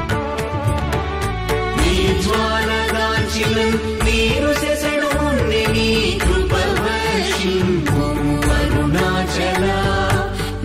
నీ జ్వాలగాంచిన నీరు సెసడు నీ కృప వర్షింపుము అరుణాచల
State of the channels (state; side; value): identical; both; correlation 1.00